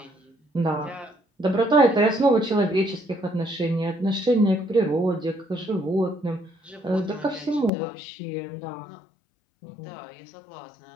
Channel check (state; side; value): drops out; right; at 7.7 s